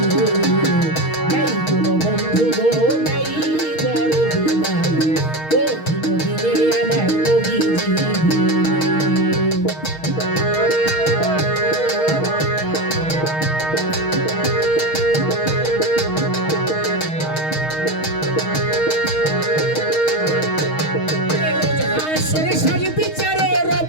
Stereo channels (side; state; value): right; late; 6.4 ms